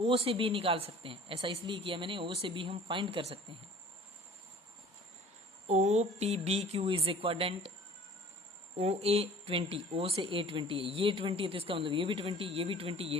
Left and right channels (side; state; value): both; normal; correlation 0.48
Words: से B निकाल सकते हैं, ऐसा इसलिए किया मैंने, O से B हम फाइंड कर सकते हैं। OPBQ is a quadrant OA 20, O से A 20 है, ये 20 है तो इसका मतलब ये भी 20, ये भी 20, ये